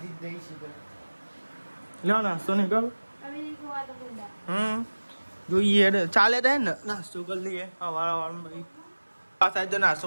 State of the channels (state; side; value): inverted; both; correlation -1.00